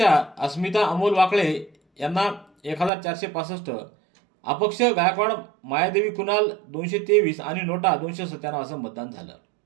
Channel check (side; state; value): left; drops out; at 2.9 s